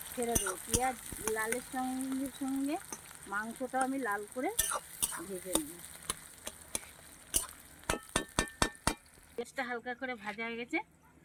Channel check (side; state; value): both; identical; correlation 1.00